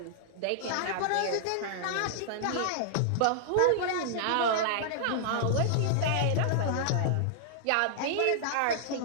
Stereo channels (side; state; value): both; different; correlation -0.01